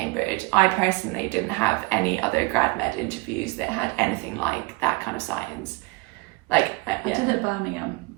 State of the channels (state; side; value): quieter; left; 26.1 dB